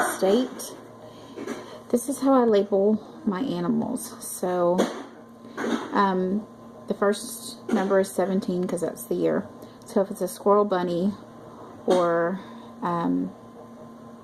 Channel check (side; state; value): both; identical; correlation 1.00